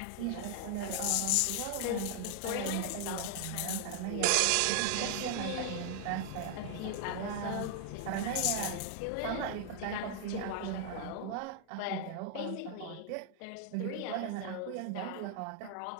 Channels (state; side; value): different; both; correlation 0.00